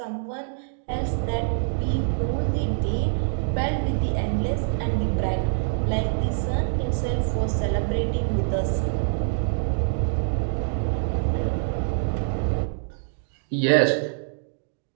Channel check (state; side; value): silent; left; digital silence